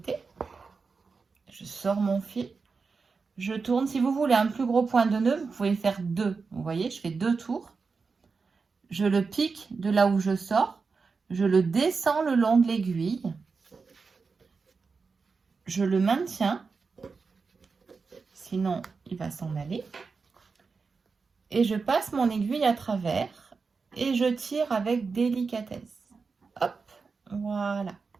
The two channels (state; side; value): quieter; left; 4.8 dB